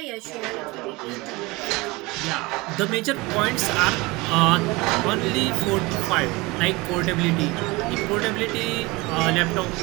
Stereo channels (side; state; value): left; quieter; 23.3 dB